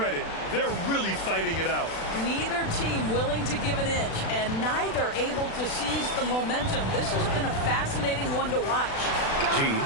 They're really fighting it out. Neither team willing to give an inch, and neither able to seize the momentum. This has been a fascinating one to watch. G.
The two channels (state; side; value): late; right; 36 ms